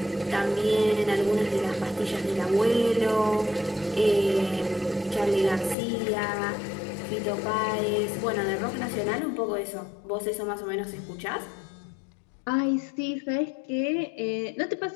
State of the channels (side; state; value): right; drops out; at 5.8 s